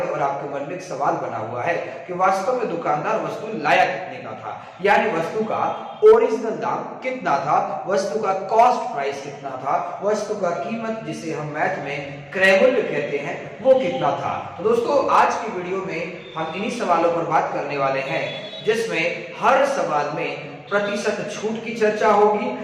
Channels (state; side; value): identical; both; correlation 1.00